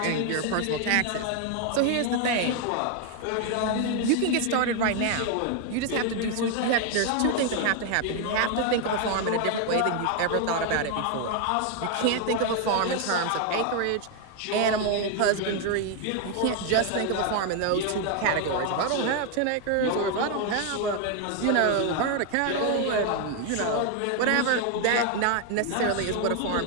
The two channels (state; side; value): different; both; correlation 0.01